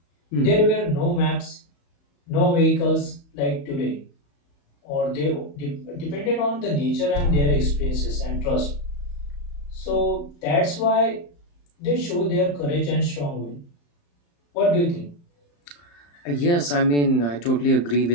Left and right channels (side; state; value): right; late; 35 ms